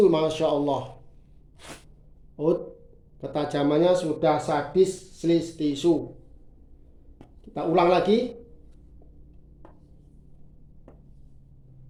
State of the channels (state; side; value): identical; both; correlation 1.00